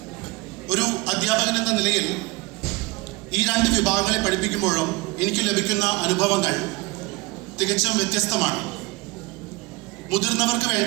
ഒരു അധ്യാപകൻ എന്ന നിലയിൽ ഈ 2 വിഭാഗങ്ങളെ പഠിപ്പിക്കുമ്പോഴും എനിക്ക് ലഭിക്കുന്ന അനുഭവങ്ങൾ തികച്ചും വ്യത്യസ്തമാണ്. മുതിർന്നവർക്ക്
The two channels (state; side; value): quieter; left; 23.8 dB